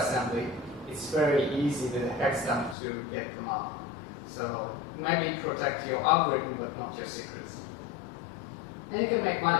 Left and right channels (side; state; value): right; drops out; at 2.8 s